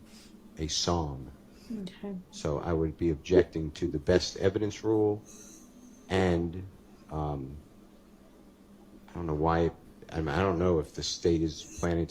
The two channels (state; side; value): identical; both; correlation 1.00